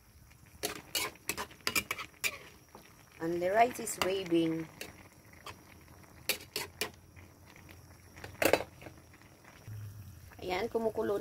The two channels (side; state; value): both; identical; correlation 1.00